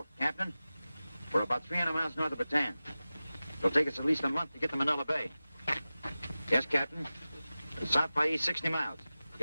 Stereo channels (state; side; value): inverted; both; correlation -0.96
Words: Captain, we're about 300 miles north of Bataan. It'll take us at least a month to get to Manila Bay. Yes, Captain. South by east 60 miles.